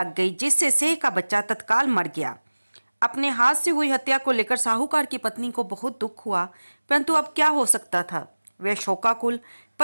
गई, जिससे सेह का बच्चा तत्काल मर गया। अपने हाथ से हुई हत्या को लेकर साहूकार की पत्नी को बहुत दुख हुआ, परंतु अब क्या हो सकता था। वह शोकाकुल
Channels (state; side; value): inverted; both; correlation -1.00